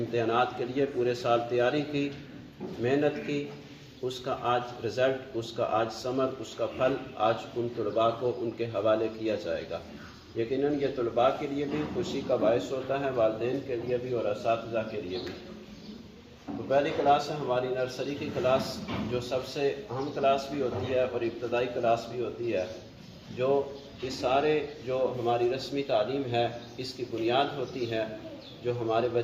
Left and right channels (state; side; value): identical; both; correlation 1.00